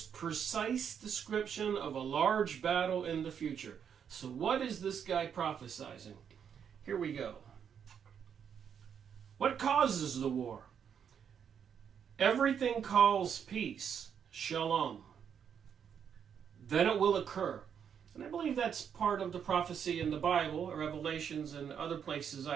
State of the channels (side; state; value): left; quieter; 7.8 dB